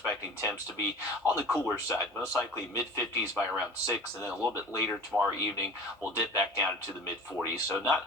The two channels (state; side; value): normal; both; correlation 0.40